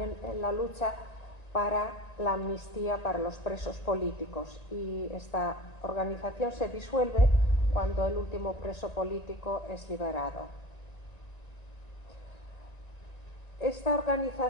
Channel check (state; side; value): late; right; 1.9 ms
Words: en la lucha para la amnistía para los presos políticos, y esta organización se disuelve cuando el último preso político es liberado. Esta